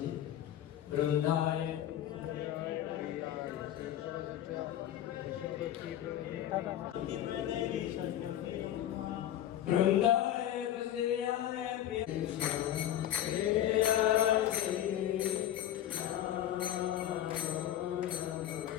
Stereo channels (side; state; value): right; quieter; 11.8 dB